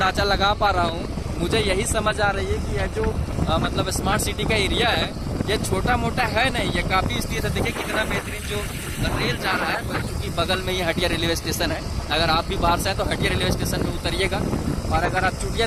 लगा पा रहा हूँ, मुझे यही समझ आ रही है कि यह जो मतलब स्मार्ट सिटी का एरिया है ये छोटा मोटा है नहीं, ये काफ़ी स्थित है। देखिए कितना बेहतरीन जो रेल जा रहा है, क्योंकि बगल में ये हटिया रेलवे स्टेशन है। अगर आप भी बाहर से हैं तो हटिया रेलवे स्टेशन में उतरिएगा, और अगर आप चुटिया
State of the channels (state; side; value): identical; both; correlation 1.00